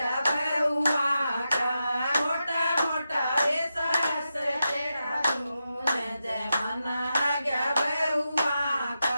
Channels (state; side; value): inverted; both; correlation -0.89